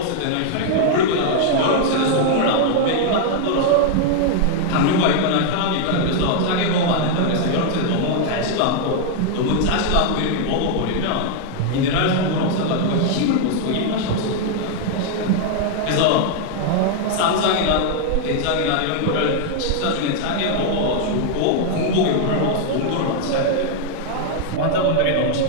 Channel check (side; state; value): both; different; correlation -0.01